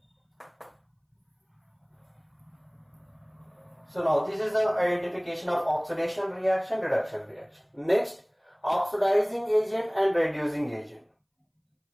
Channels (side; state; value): both; identical; correlation 1.00